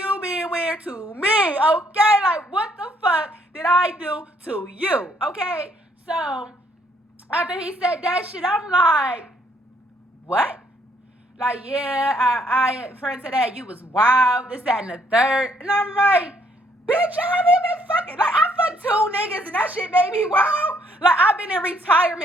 being weird to me, okay? Like, what the fuck did I do to you, okay? So, after he said that shit, I'm like, what? Like, yeah, I friend said that you was wild, this, that, and the third. And I'm like, bitch, I haven't been fucking. Like, I fucked 2 niggas and that shit made me wild. Like, I've been in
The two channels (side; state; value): both; normal; correlation 0.67